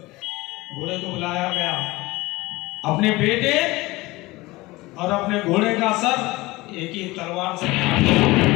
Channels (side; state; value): right; quieter; 20.8 dB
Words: घोड़े को बुलाया गया। अपने बेटे और अपने घोड़े का सर एक ही तलवार से काट दिया।